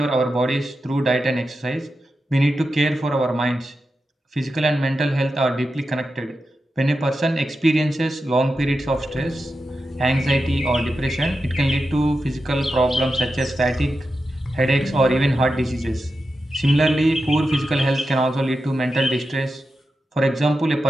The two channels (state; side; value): normal; both; correlation 0.90